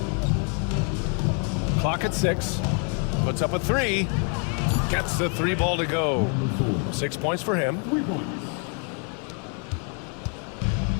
Clock at 6. Puts up a 3. Gets the 3 ball to go. 6 points for him.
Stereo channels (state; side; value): quieter; right; 39.4 dB